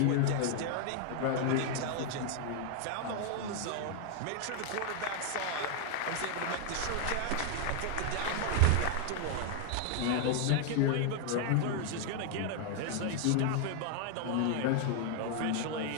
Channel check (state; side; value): different; both; correlation 0.00